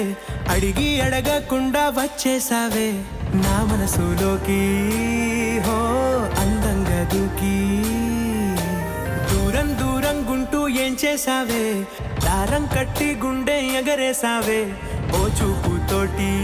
అడిగి అడగకుండా వచ్చేసావే నా మనసులోకి. హో అందంగా దూకి దూరం దూరం గుంటూ ఏం చేసావే, దారం కట్టి గుండె ఎగరేసావే ఓ చూపుతోటి.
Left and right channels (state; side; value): identical; both; correlation 1.00